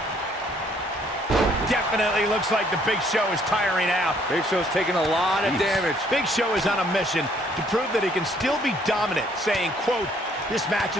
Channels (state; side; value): normal; both; correlation 0.64